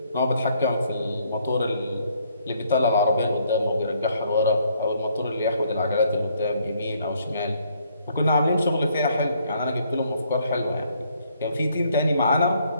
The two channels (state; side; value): inverted; both; correlation -0.68